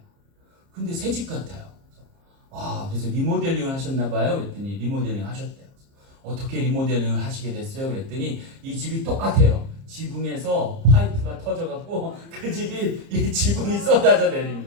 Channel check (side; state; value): left; late; 30 ms